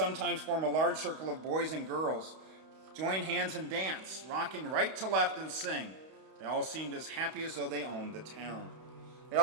form a large circle of boys and girls, join hands and dance, rocking right to left and sing. They all seemed as happy as though they owned the town. They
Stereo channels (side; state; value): left; late; 32 ms